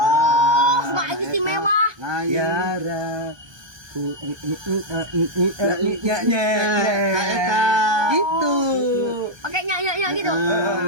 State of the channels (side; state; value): left; late; 1.2 ms